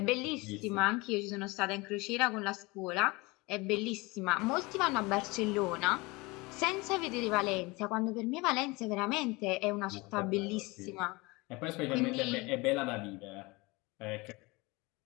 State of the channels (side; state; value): right; quieter; 24.4 dB